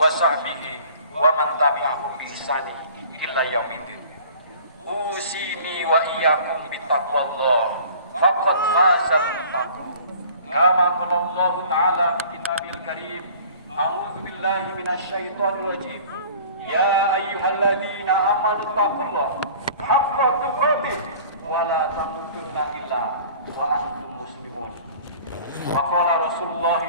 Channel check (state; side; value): inverted; both; correlation -0.47